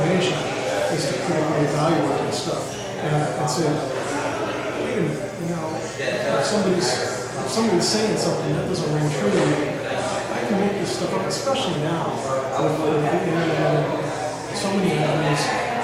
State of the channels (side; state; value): both; identical; correlation 1.00